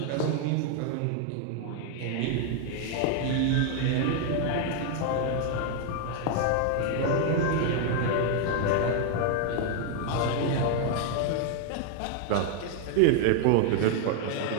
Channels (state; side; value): different; both; correlation 0.00